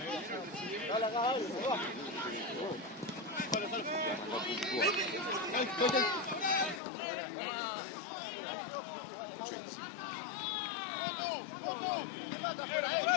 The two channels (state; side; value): drops out; right; at 6.8 s